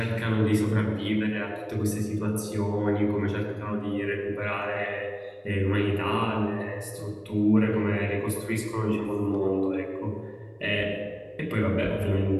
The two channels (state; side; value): identical; both; correlation 1.00